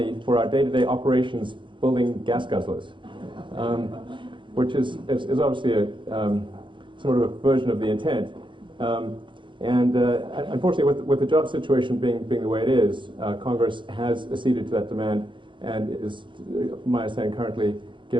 for our day-to-day operations building gas guzzlers, which is obviously a sort of a version of the intent. Unfortunately, with the job situation being the way it is, Congress has acceded to that demand and is, my understanding, currently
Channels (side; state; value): left; late; 0.23 ms